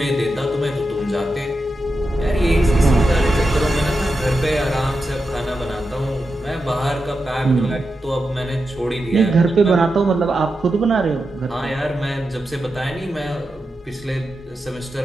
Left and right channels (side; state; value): both; normal; correlation 0.89